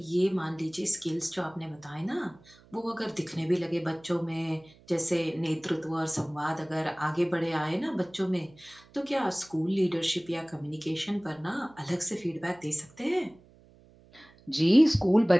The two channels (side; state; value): right; noise; hum, 26 dB below the sound